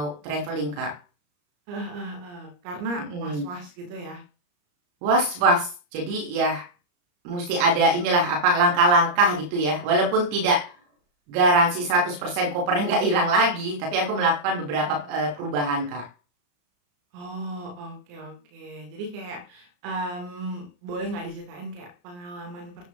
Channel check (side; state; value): left; late; 34 ms